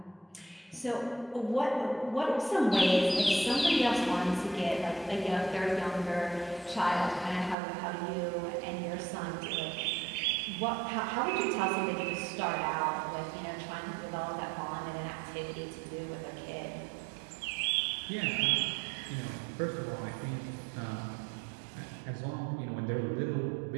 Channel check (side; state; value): left; drops out; at 7.6 s